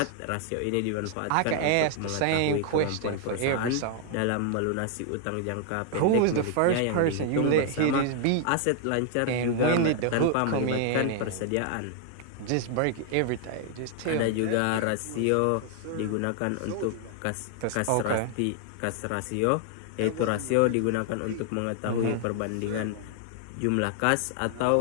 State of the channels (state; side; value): different; both; correlation 0.00